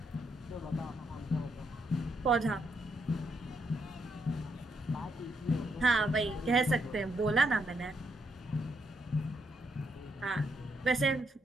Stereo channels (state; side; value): normal; both; correlation 0.78